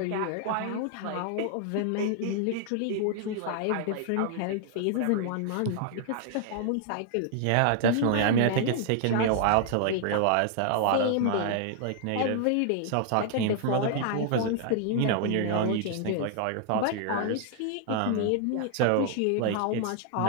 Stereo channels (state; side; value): different; both; correlation 0.00